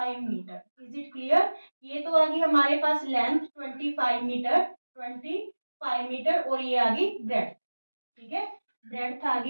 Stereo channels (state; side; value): inverted; both; correlation -1.00